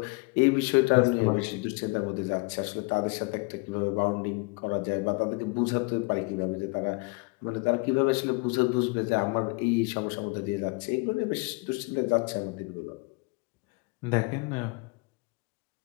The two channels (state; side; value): quieter; right; 29.0 dB